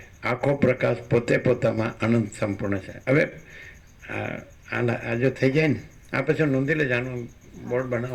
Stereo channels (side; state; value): both; identical; correlation 1.00